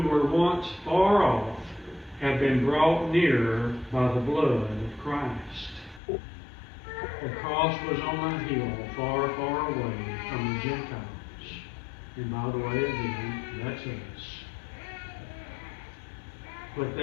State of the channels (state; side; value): drops out; right; at 6.0 s